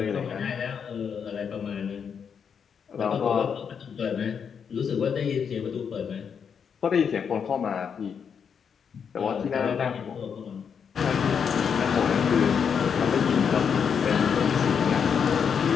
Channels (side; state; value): right; quieter; 7.0 dB